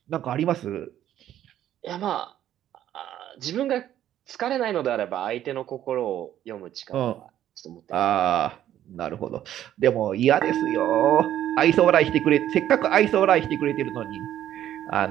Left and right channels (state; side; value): quieter; left; 11.7 dB